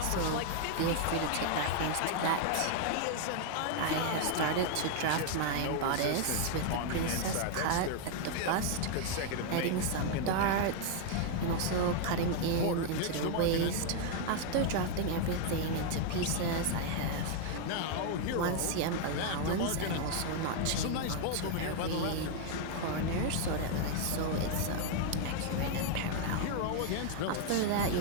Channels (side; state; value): both; different; correlation 0.00